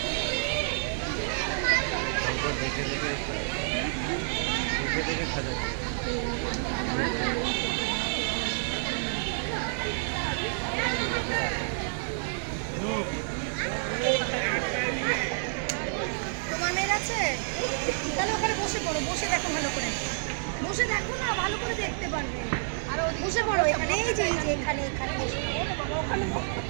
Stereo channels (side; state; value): left; silent; digital silence